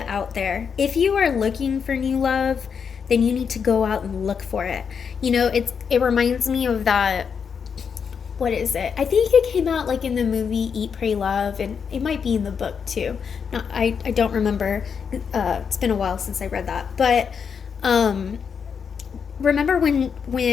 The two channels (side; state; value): right; quieter; 6.6 dB